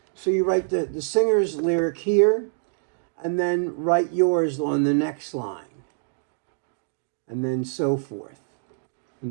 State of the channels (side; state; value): left; silent; digital silence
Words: So you write the singer's lyric here, and then write yours on the next line, and then so forth,